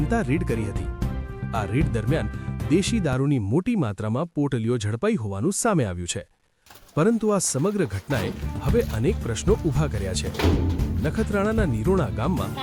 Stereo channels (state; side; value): identical; both; correlation 1.00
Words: રેડ કરી હતી। આ રેડ દરમિયાન દેશી દારૂની મોટી માત્રામાં પોટલીઓ ઝડપાઈ હોવાનું સામે આવ્યું છે, પરંતુ આ સમગ્ર ઘટનાએ હવે અનેક પ્રશ્નો ઊભા કર્યા છે। નખત્રાણાના નિરોણા ગામમાં